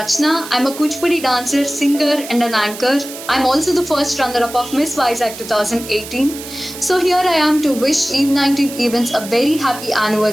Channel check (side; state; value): right; noise; hiss, 12 dB below the sound